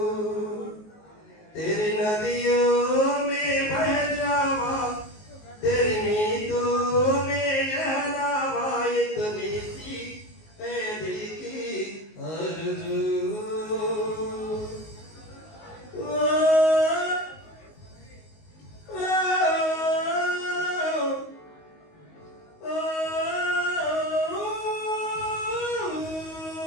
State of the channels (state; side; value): late; right; 19 ms